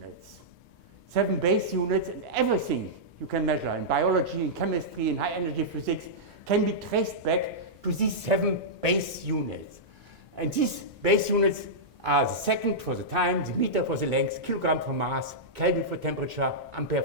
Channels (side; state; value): both; normal; correlation -0.11